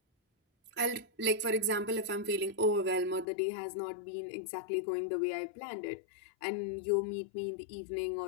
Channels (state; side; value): drops out; right; at 3.2 s